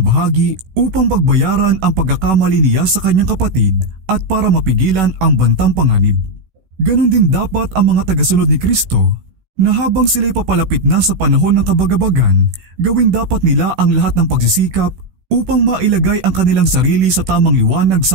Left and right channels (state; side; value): late; left; 16 ms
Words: bahagi upang pagbayaran ang pagkakamali niya sa kanyang kapatid at para mapigilan ang bantang panganib. Ganon din dapat ang mga tagasunod ni Kristo na habang sila'y papalapit na sa panahon ng kabagabagan, gawin dapat nila ang lahat ng pagsisikap upang mailagay ang kanilang sarili sa tamang liwanag